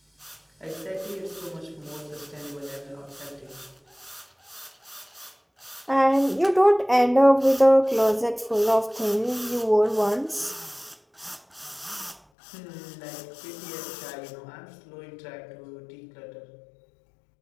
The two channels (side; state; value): right; drops out; at 12.2 s